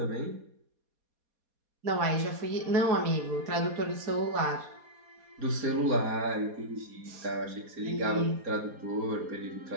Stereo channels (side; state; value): left; late; 4.2 ms